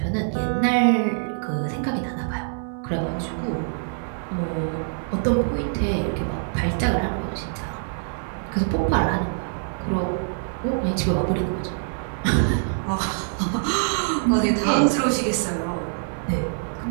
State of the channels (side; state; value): left; silent; 61 dB below the other